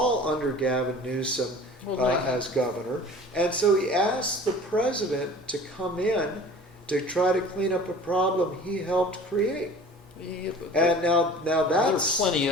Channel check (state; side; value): normal; both; correlation 0.44